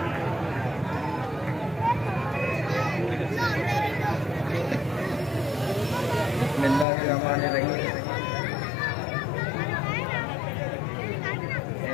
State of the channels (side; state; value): right; drops out; at 6.9 s